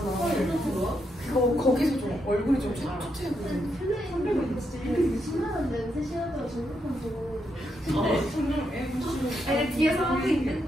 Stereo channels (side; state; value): both; normal; correlation 0.80